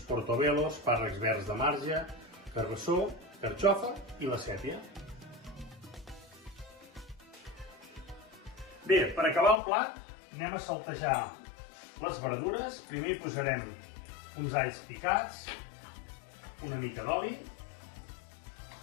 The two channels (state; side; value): drops out; right; at 9.6 s